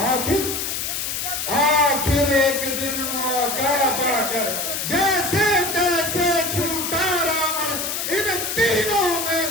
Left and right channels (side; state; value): left; noise; hiss, 3 dB below the sound